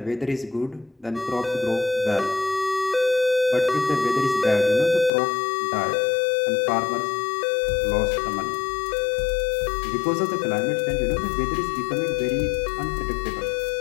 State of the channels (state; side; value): drops out; right; at 5.1 s